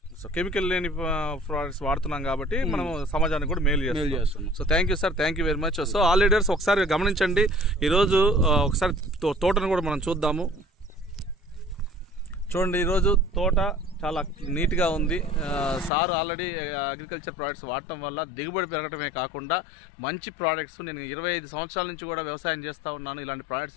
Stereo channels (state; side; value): drops out; right; at 15.9 s